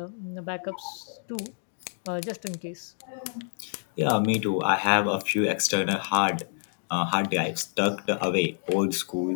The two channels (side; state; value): right; silent; digital silence